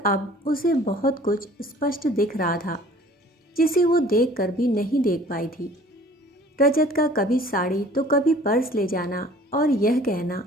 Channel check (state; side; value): normal; both; correlation 0.50